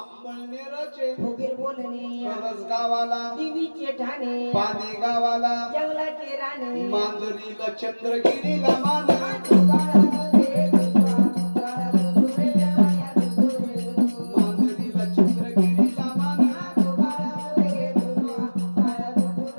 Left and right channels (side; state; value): both; inverted; correlation -1.00